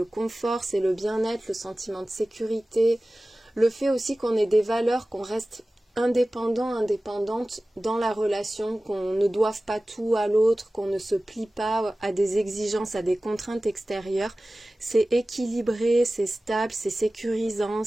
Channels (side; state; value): both; normal; correlation 0.97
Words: confort, c'est le bien-être, le sentiment de sécurité, le fait aussi qu'on ait des valeurs, qu'on reste indépendante dans la relation, qu'on ne doive pas tout à l'autre, qu'on ne se plie pas à des exigences, à des contraintes extérieures. C'est équilibré, c'est stable, c'est sécurisant,